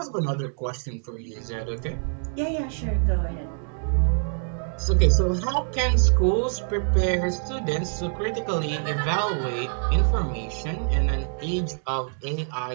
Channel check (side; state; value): left; silent; digital silence